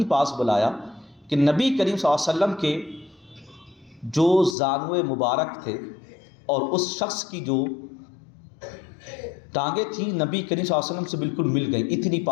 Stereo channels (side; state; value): right; drops out; at 4.5 s